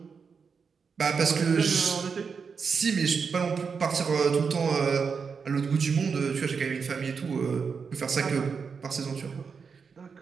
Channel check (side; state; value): left; quieter; 5.7 dB